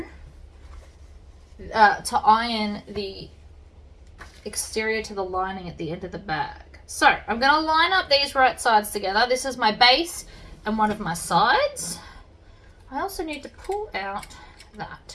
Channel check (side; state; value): both; identical; correlation 1.00